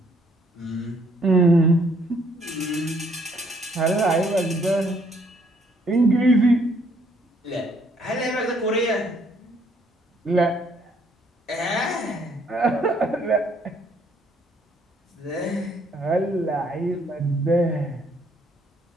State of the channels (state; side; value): normal; both; correlation 0.66